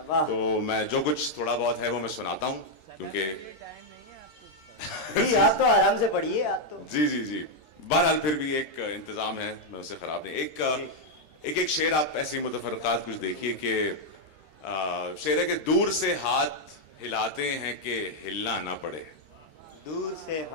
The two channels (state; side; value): late; right; 13 ms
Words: वाह। तो मैं जो कुछ थोड़ा बहुत है वो मैं सुनाता हूं, क्योंकि जी आप तो आराम से पढ़िए, आप तो। जी जी जी, बहरहाल फिर भी एक इंतजाम है, मैं उसे खराब नहीं। एक शेर आप ऐसे ही मुतफरकात कुछ देखिए कि शेर है कि दूर से हाथ हिलाते हैं कि हिलना ना पड़े, दूर से